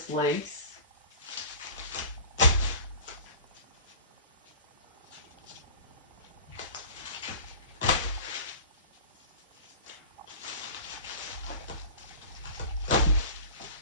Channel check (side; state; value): both; inverted; correlation -0.39